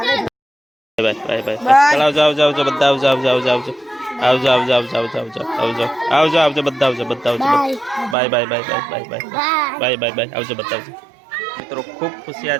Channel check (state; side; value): drops out; left; at 8.2 s